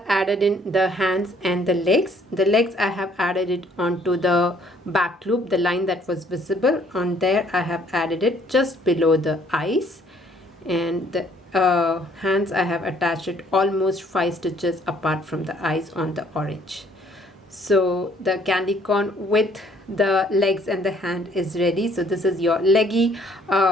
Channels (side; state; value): both; normal; correlation 0.62